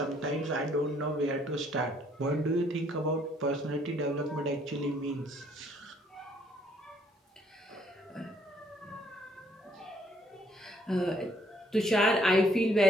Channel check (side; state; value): both; normal; correlation 0.66